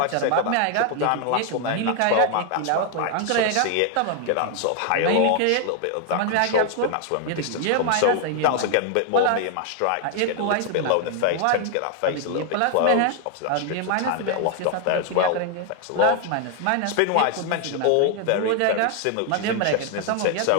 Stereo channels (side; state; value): both; different; correlation 0.00